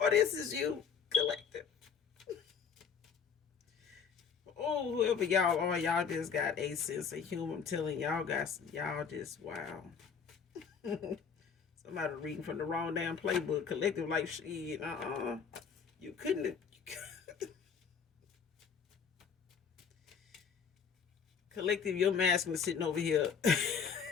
this is you, collective. Oh, whoever y'all are, y'all just got a sense of humor. I'm telling y'all just wow. Somebody reading from the wrong damn playbook. Collective like shit. You couldn't. Collective, your masculine sitting over here.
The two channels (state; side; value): quieter; right; 6.5 dB